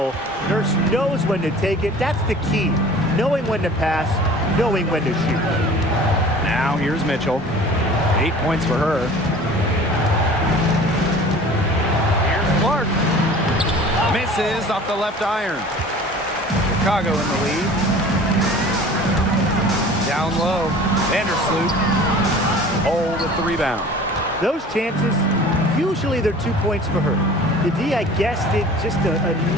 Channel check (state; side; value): normal; both; correlation 0.44